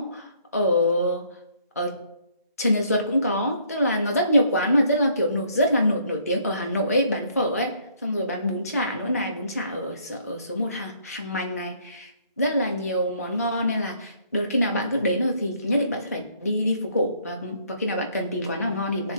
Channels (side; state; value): both; inverted; correlation -0.64